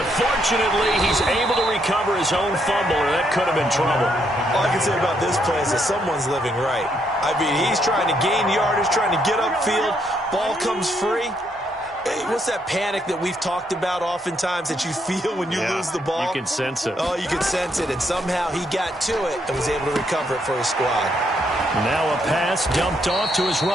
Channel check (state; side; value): normal; both; correlation 0.74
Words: fortunately, he's able to recover his own fumble, or that could have been trouble. All I can say about this play is that someone's living right. I mean, he's trying to gain yardage, trying to get upfield. Ball comes free. Hey, what's that panic that we've talked about oftentimes that you feel when you lose the ball? You can sense it. Oh, you can sense it. And somehow he got to it and was able to recover it for his squad. Now a pass dumped off to his